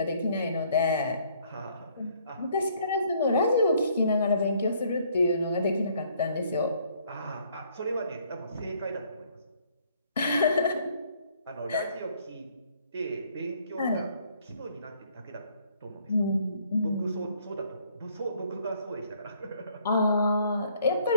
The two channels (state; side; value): inverted; both; correlation -0.64